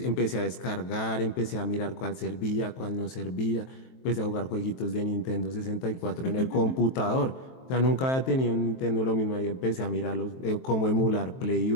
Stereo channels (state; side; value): late; right; 23 ms